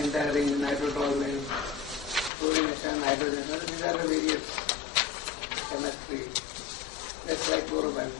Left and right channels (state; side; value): drops out; right; at 2.3 s